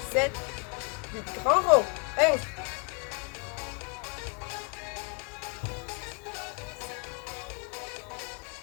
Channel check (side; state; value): right; quieter; 35.9 dB